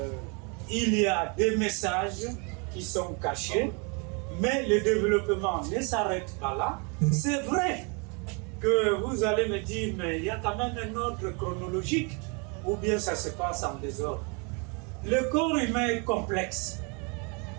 il y a des messages qui sont cachés, mais le développement ne s'arrête pas là. C'est vrai que vous allez me dire, mais il y a quand même un ordre chronologique, ou bien ça se passe en désordre. Le corps humain est complexe.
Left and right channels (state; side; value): quieter; left; 33.4 dB